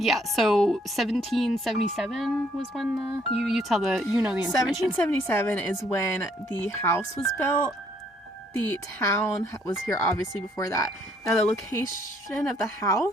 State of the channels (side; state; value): both; normal; correlation 0.66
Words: so 1777 was when you know the information. 1777 is when the house was built. The town was here obviously before that. Now the location of the